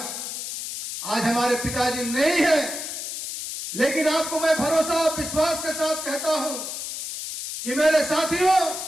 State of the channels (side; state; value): left; noise; hiss, 6 dB below the sound